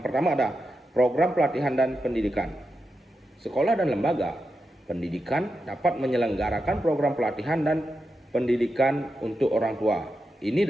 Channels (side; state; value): both; normal; correlation 0.88